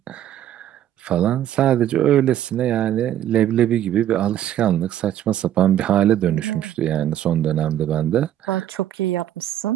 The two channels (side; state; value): left; quieter; 11.6 dB